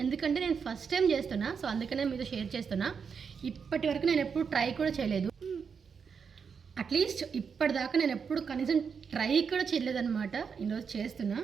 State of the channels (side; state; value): left; quieter; 6.2 dB